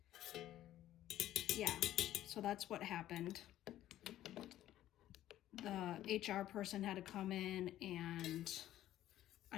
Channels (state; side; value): quieter; right; 13.3 dB